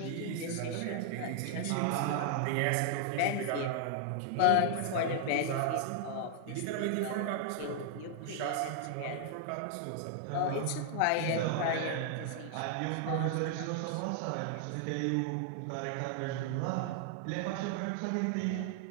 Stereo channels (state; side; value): different; both; correlation -0.01